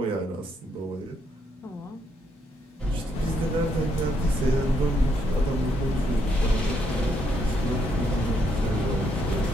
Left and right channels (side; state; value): both; normal; correlation 0.75